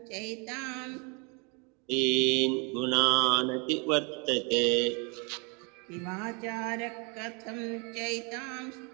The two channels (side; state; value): left; quieter; 33.4 dB